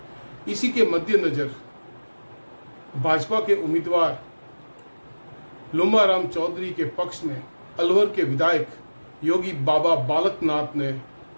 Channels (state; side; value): inverted; both; correlation -1.00